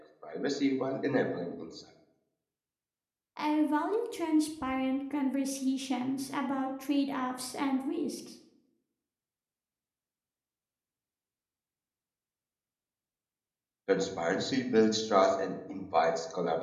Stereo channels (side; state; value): both; identical; correlation 1.00